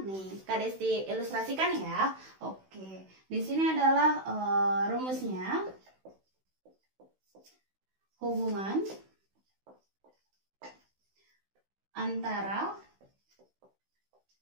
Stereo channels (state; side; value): late; left; 16 ms